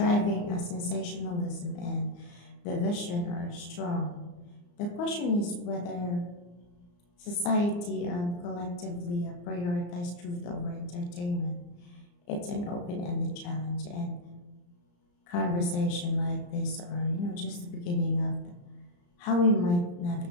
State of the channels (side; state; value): right; late; 34 ms